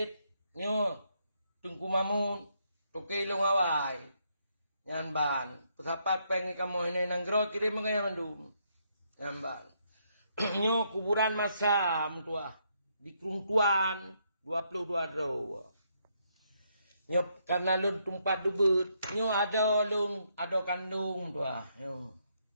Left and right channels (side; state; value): both; inverted; correlation -0.75